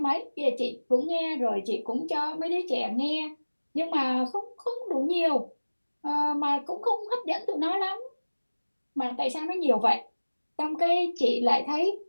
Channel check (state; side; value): inverted; both; correlation -1.00